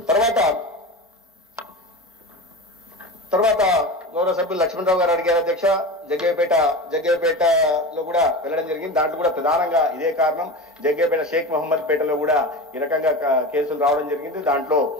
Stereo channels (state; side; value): normal; both; correlation 0.28